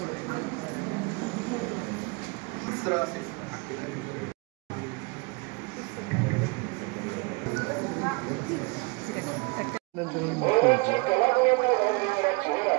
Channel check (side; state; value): left; quieter; 28.4 dB